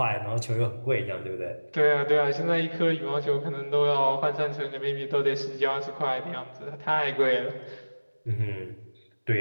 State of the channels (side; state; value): both; inverted; correlation -1.00